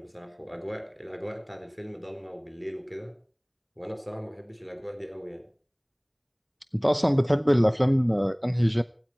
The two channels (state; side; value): identical; both; correlation 1.00